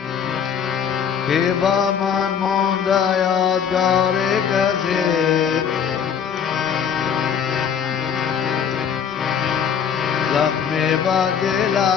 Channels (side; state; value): right; quieter; 7.6 dB